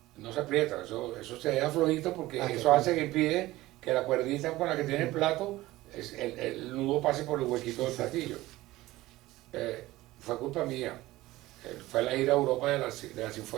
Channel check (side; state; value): left; quieter; 17.7 dB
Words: No se aprieta, eso se deja flojito porque eso hace que impide que la cuerdita con la que tiene el plato, el nudo pase por el huequito del platillo. Fue culpa mía. Fue la gira a Europa de la